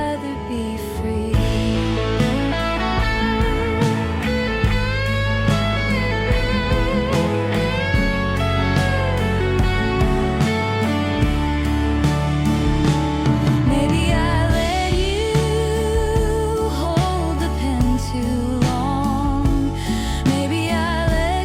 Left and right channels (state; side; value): identical; both; correlation 1.00